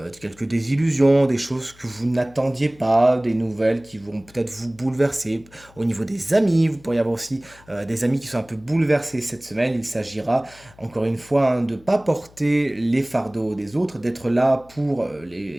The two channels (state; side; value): noise; left; hum, 26 dB below the sound